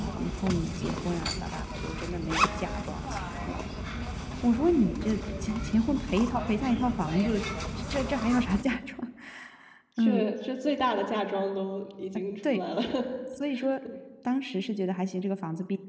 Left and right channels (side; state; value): both; identical; correlation 1.00